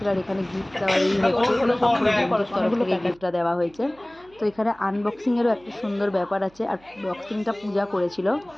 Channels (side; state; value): right; noise; hum, 28 dB below the sound